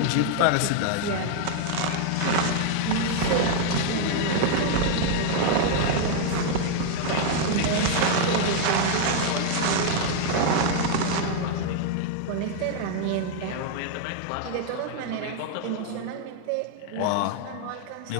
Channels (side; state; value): both; different; correlation 0.00